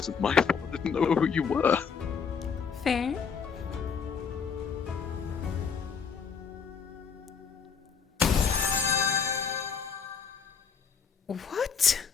my fault. I didn't know who you were. Fair. What?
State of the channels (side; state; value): right; quieter; 6.3 dB